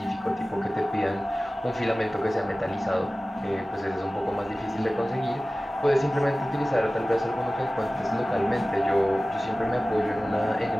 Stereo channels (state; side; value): normal; both; correlation 0.97